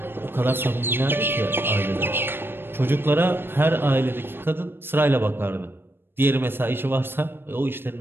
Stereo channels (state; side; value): late; left; 0.10 ms